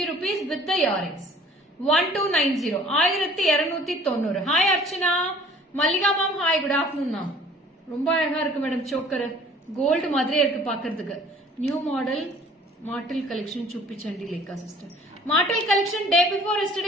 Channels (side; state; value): both; normal; correlation 0.51